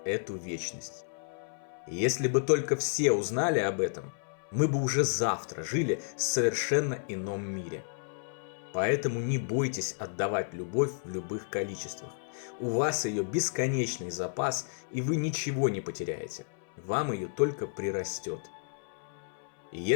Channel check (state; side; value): silent; right; 57 dB below the other